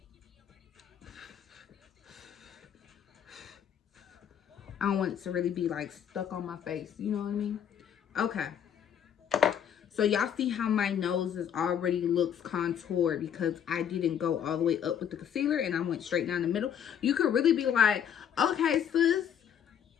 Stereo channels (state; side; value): quieter; right; 8.9 dB